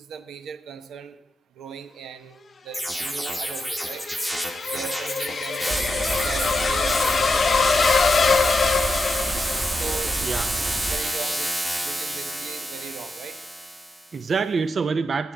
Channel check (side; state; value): both; normal; correlation 0.87